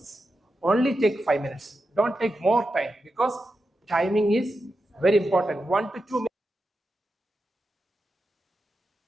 Only take 5 minutes. Don't take more time because timing is very important. 1 to 2 minutes.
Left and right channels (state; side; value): normal; both; correlation 0.89